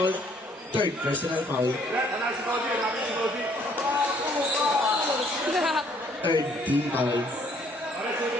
Third personal foul. Third team foul.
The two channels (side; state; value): both; normal; correlation 0.63